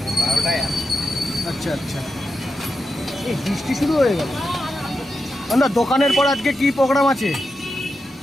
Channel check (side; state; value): both; normal; correlation 0.87